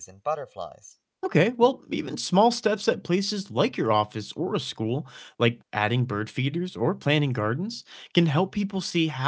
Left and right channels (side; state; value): both; identical; correlation 1.00